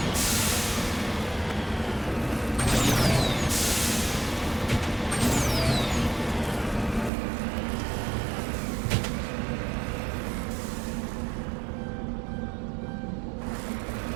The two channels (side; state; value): left; drops out; at 7.1 s